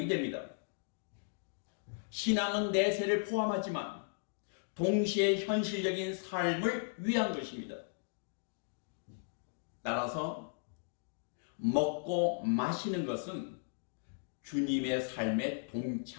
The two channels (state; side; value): silent; right; digital silence